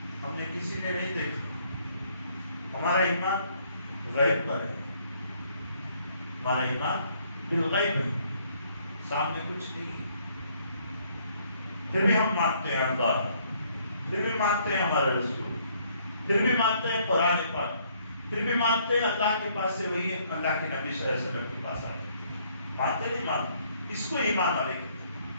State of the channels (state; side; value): inverted; both; correlation -0.66